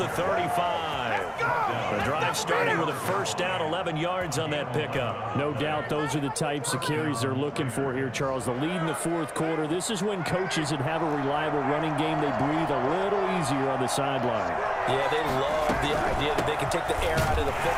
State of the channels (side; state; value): both; identical; correlation 1.00